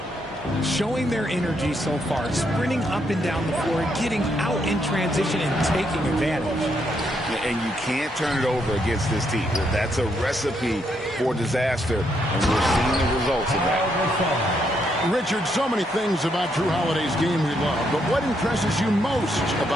Showing their energy so far, sprinting up and down the floor, getting out in transition and taking advantage. And you can't turn it over against this team. That's a recipe for disaster, and we're seeing the results of that. Richard, so many things about Drew Holiday's game we love, but what impresses you most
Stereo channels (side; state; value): both; normal; correlation 0.76